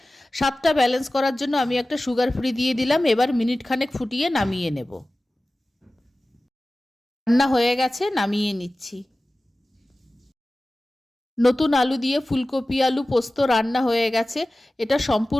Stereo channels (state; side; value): normal; both; correlation 0.96